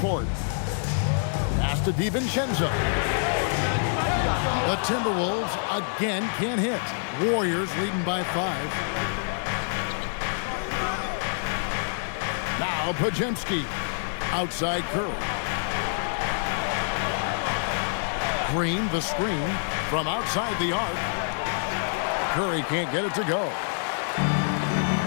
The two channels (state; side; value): silent; right; digital silence